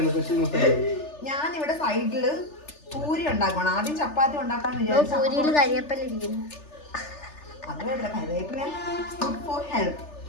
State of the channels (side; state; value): right; late; 3.4 ms